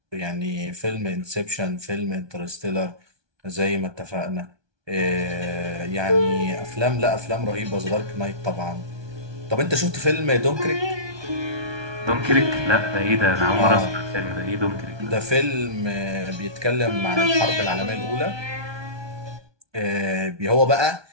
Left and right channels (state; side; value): late; left; 1.2 ms